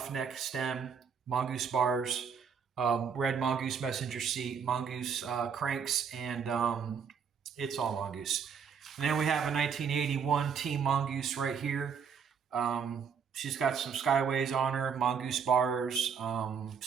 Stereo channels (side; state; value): left; quieter; 6.7 dB